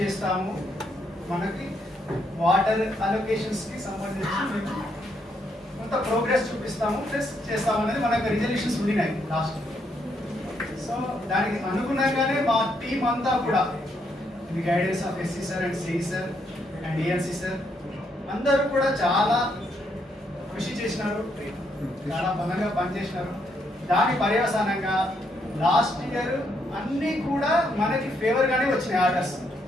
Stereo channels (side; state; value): both; normal; correlation 0.75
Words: మనకి వాటర్ అలొకేషన్స్కి సంబంధించి మేము కొంత ప్రోగ్రెస్ చూపిస్తాము ప్లస్ చేస్తాము అనేది మనకు రిజల్యూషన్స్ ఉండినాయి లాస్ట్. సో దానికి అనుగుణంగానే మా టీం అంతా కూడా the guidance of SC sir and CE sir and ANC sir అందరూ కూడా చాలా కృషి చేసినారు, చాలా బలంగా పనిచేసినారు. దాని పర్యవసానంగా లాస్ట్ ఇయర్ అన్నీ కూడా మనకి ఫేవర్గానే వచ్చినాయి ఆర్డర్స్.